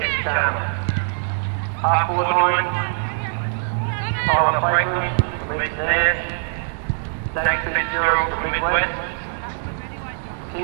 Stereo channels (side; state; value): left; silent; 64 dB below the other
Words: Half forward line, Tyler Franklin from Eastern Air, Zach Fitzgerald from Midwest,